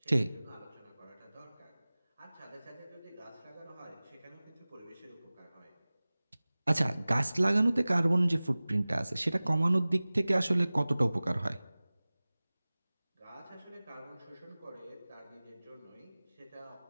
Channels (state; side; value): inverted; both; correlation -0.99